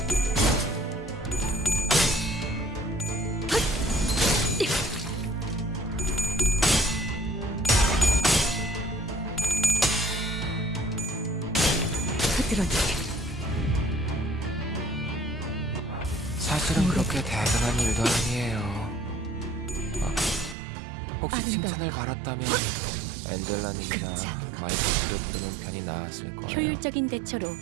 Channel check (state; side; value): drops out; left; at 20.6 s